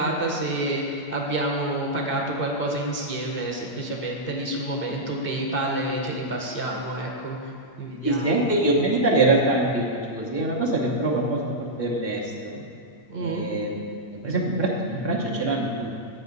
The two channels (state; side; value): late; right; 8.6 ms